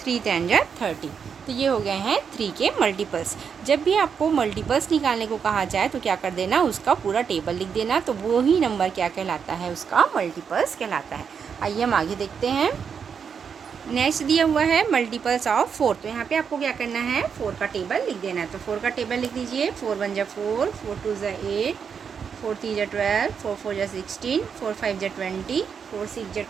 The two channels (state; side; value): quieter; left; 6.7 dB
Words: 10 जा 30। तो ये हो गए हैं 3 के मल्टीपल्स। जब भी आपको मल्टीपल्स निकालने को कहा जाए तो क्या कर देना, उसका पूरा टेबल लिख देना। तो वो ही नंबर क्या कहलाता है, उसका मल्टीपल्स कहलाता है। आइए हम आगे देखते हैं। नेक्स्ट दिया हुआ है मल्टीपल्स ऑफ 4। तो यहाँ पे आपको क्या करना है, 4 का टेबल लिख देना है। तो 4 का टेबल लिख दीजिए। 4 1 जा 4, 4 2 जा 8, 4 3 जा 12, 4 4 जा 16, 4 5 जा 20, 4 6 जा